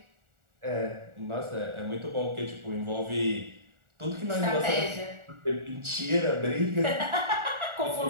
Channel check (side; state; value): left; late; 1.4 ms